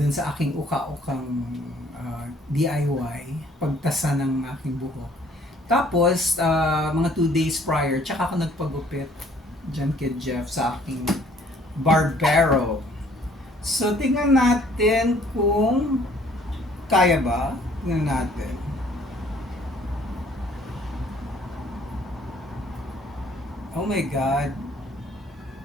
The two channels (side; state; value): both; normal; correlation 0.59